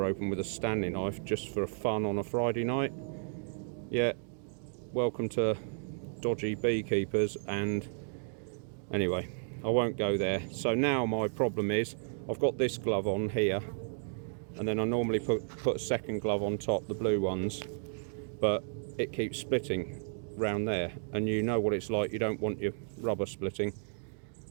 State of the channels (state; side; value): silent; left; digital silence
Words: open with a Stanley knife just for fun on a Friday night. Yeah, welcome to dodgy beekeepers. And anyway, I won't go there. So now my problem is I've got this glove on here, and then I normally put a second glove on top, the blue ones, but it keeps splitting round there, and you know what it's like, you don't want your rubber splitting.